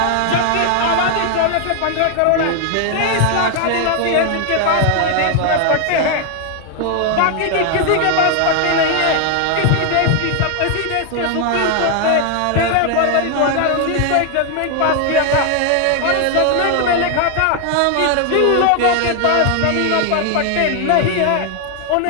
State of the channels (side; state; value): both; different; correlation 0.00